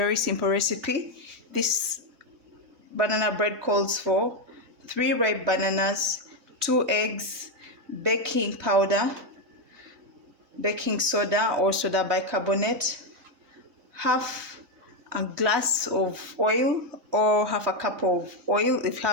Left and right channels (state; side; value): late; left; 3.2 ms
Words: simple recipe. This banana bread calls for 3 ripe bananas, 2 eggs, baking powder, baking soda or soda bicarbonate, half a glass of oil or half a cup of oil. If you